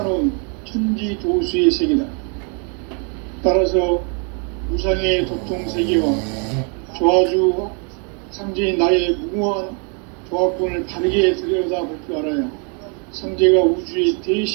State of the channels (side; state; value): left; quieter; 37.9 dB